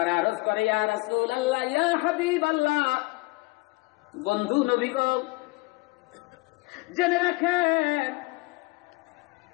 আরজ করে ইয়া রাসূলুল্লাহ, ইয়া হাবিবাল্লাহ, বন্ধু নবী গো জেনে রাখেন।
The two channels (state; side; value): quieter; right; 24.8 dB